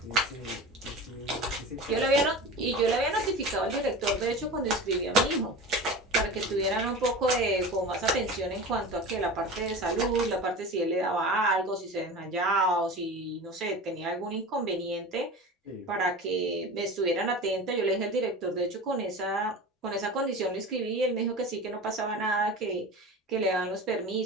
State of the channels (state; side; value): normal; both; correlation 0.32